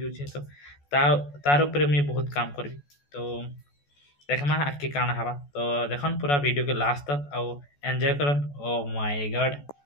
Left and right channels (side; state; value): right; late; 14 ms